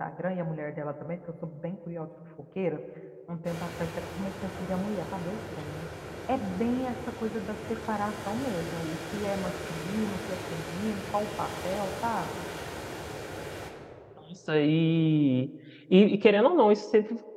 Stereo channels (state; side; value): identical; both; correlation 1.00